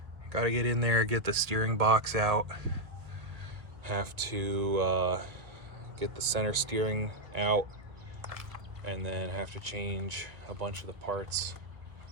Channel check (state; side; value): late; left; 1.3 ms